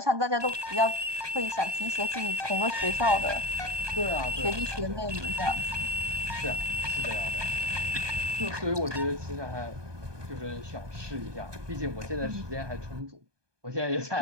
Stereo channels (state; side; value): late; left; 1.2 ms